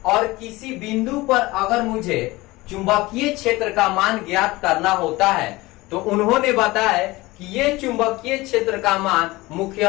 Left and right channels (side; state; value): right; quieter; 20.6 dB